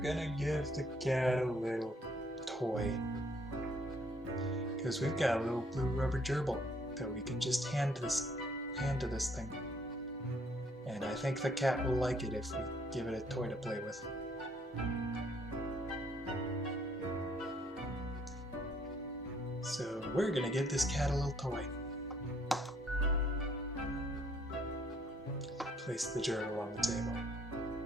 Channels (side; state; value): both; normal; correlation 0.65